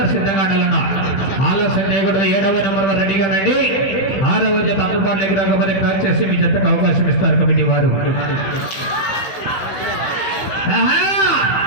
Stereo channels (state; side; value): late; right; 15 ms